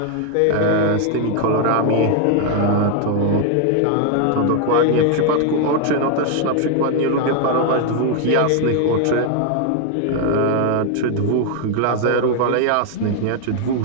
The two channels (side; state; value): both; different; correlation 0.00